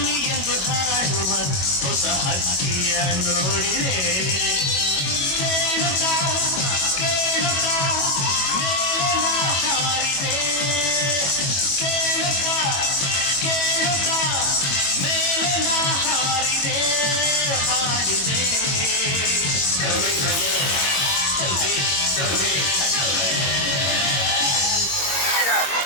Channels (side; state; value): right; late; 22 ms